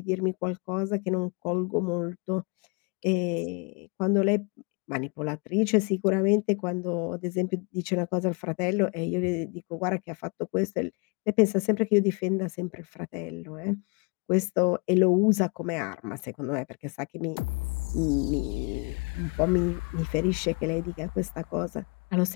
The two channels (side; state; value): right; quieter; 32.4 dB